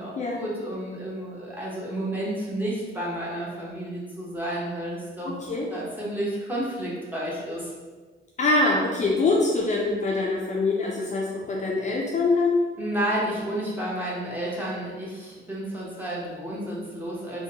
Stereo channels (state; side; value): normal; both; correlation 0.47